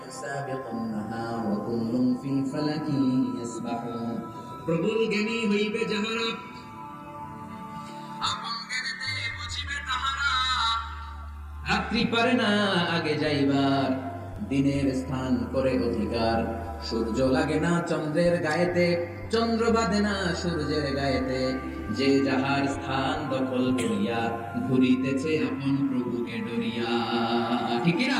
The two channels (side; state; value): both; identical; correlation 1.00